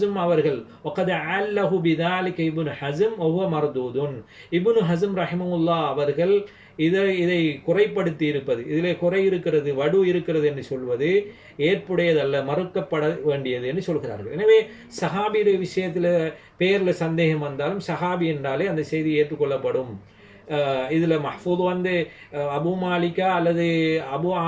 அவர்கள் வகத் அல்லஹு பிதாலிக இப்னு ஹஸம் வஹுவ மர்தூதுன், இப்னு ஹஸம் ரஹிமஹுல்லாஹ் அவர்கள் இதை குறைப்படுத்தி இருப்பது, இதிலே குறை இருக்கிறது, வடு இருக்கிறது என்று சொல்வது ஏற்புடையதல்ல, மறுக்கப்பட வேண்டியது என்று சொல்கிறார்கள். எனவே சஹாபியுடைய விஷயத்தில் பேரில் சந்தேகம் வந்தாலும் சஹாபி என்றாலே அந்த செய்தி ஏற்றுக்கொள்ளப்படும். இதில் மஹ்ஃபூத் அபு மாலிகா அல்லது அபு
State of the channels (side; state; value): both; identical; correlation 1.00